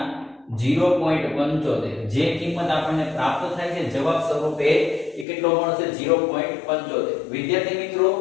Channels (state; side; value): drops out; right; at 5.2 s